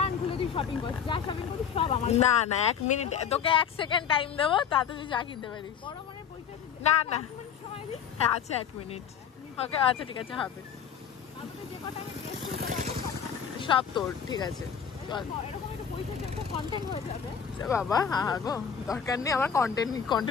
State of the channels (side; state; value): right; quieter; 7.6 dB